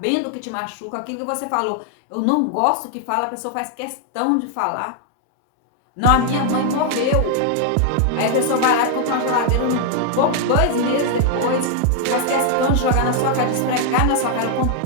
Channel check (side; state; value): both; different; correlation 0.00